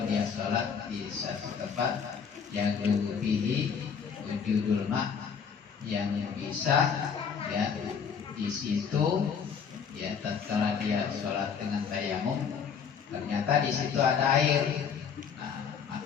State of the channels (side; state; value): right; quieter; 6.7 dB